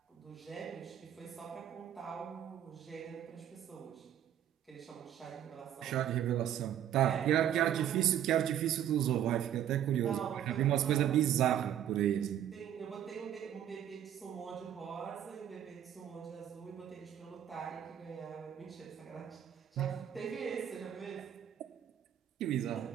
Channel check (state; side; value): quieter; left; 10.4 dB